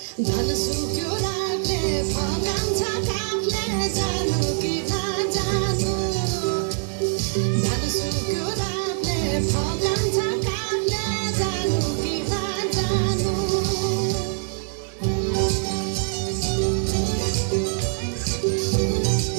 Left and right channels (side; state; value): left; silent; digital silence